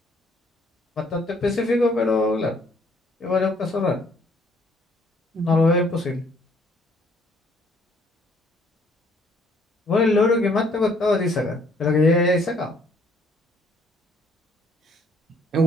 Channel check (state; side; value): normal; both; correlation 0.64